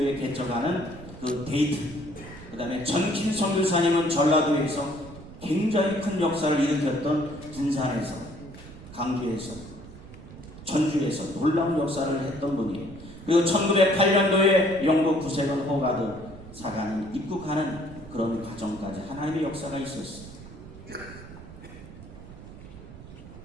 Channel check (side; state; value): right; noise; rumble, 16 dB below the sound